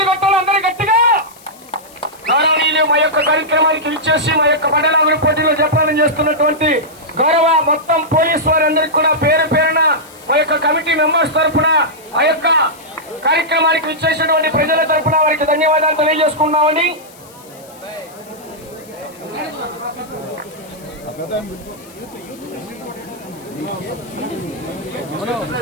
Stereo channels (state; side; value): noise; left; hiss, 24 dB below the sound